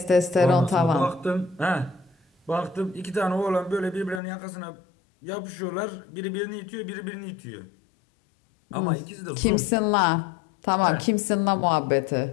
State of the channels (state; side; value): drops out; right; at 4.2 s